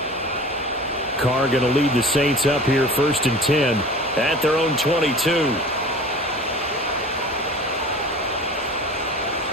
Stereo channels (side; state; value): both; normal; correlation 0.40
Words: Carr going to lead the Saints up here 1st and 10 at their own 22.